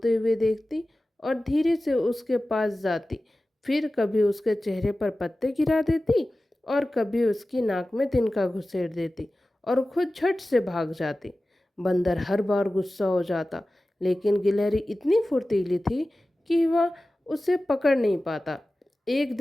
हुए देखती और धीरे से उसके पास जाती। फिर कभी उसके चेहरे पर पत्ते गिरा देती और कभी उसकी नाक में तिनका घुसेड़ देती और खुद झट से भाग जाती। बंदर हर बार गुस्सा हो जाता, लेकिन गिलहरी इतनी फुर्तीली थी कि वह उसे पकड़ नहीं पाता। एक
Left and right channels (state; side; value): normal; both; correlation 0.96